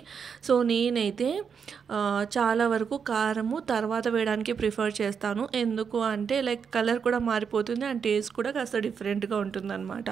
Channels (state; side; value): quieter; left; 6.6 dB